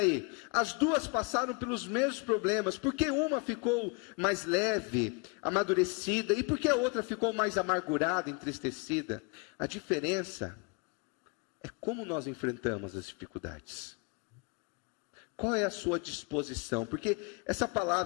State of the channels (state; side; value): quieter; right; 31.0 dB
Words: as duas passaram pelos mesmos problemas. Por que uma ficou mais leve, amadurecida, e por que a outra ficou mais amargurada, entristecida? A diferença é como nós enfrentamos as dificuldades. Qual é a sua disposição? Porque essa